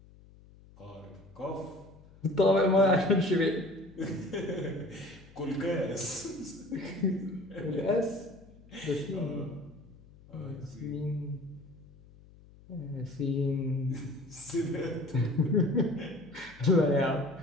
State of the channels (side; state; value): left; noise; hum, 23 dB below the sound